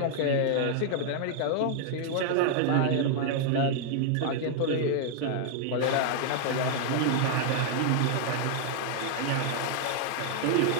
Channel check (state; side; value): different; both; correlation -0.01